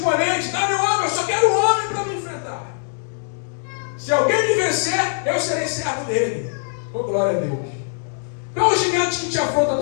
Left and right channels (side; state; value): right; silent; digital silence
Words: dá meu homem, eu só quero um homem para me enfrentar. Se alguém me vencer, eu serei servo dele. Oh, glória a Deus. Qual é o gigante que te afronta